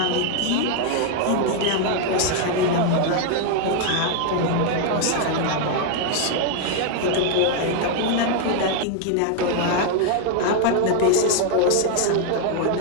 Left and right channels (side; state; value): both; different; correlation 0.00